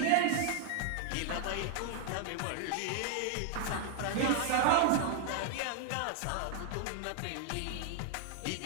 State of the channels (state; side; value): different; both; correlation 0.00